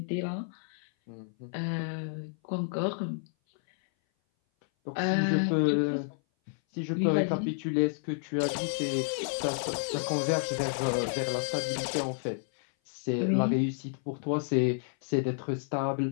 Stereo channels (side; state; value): right; silent; 57 dB below the other